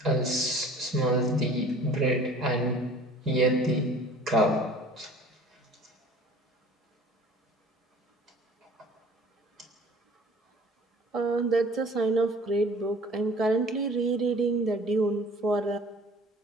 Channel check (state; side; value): normal; both; correlation 0.48